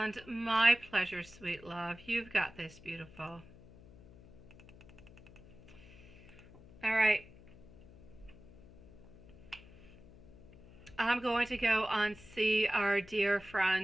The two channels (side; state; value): left; noise; hum, 21 dB below the sound